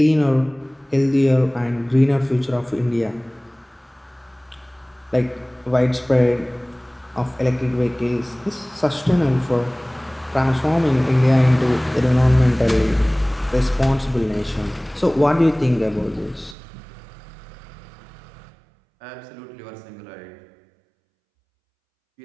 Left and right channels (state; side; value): drops out; left; at 16.6 s